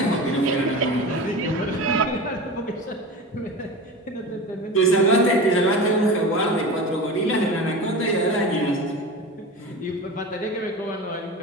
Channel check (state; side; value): normal; both; correlation 0.30